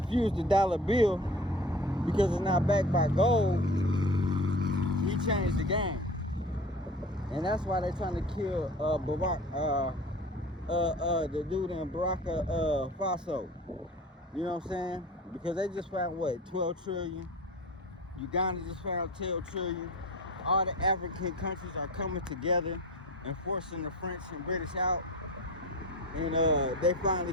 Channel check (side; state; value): both; normal; correlation 0.37